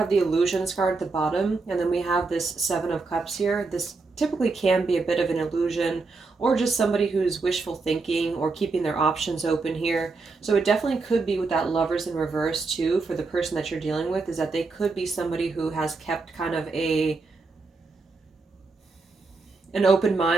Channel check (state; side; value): quieter; left; 4.0 dB